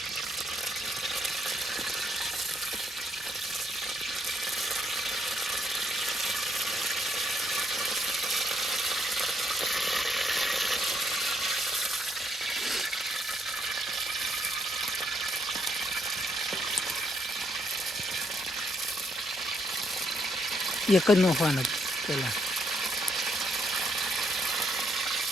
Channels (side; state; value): both; normal; correlation 0.74